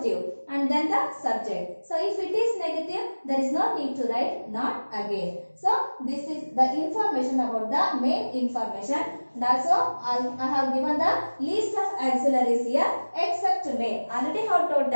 and then the subject. So if it is negative, there is no need to write not again. So this is the information about the main information, and also I have given the list of auxiliaries here except may. Already have told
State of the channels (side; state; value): both; inverted; correlation -1.00